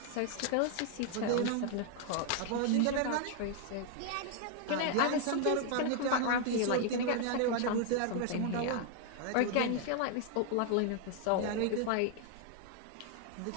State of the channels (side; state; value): both; different; correlation 0.00